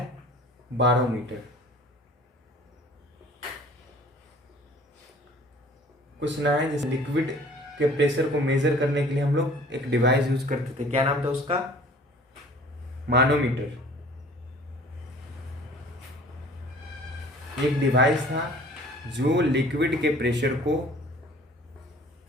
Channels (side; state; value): both; normal; correlation 0.49